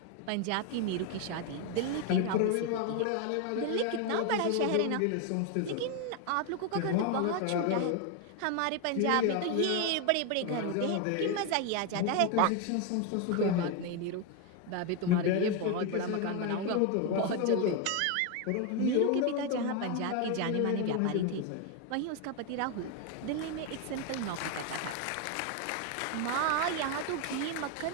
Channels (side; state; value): both; different; correlation 0.01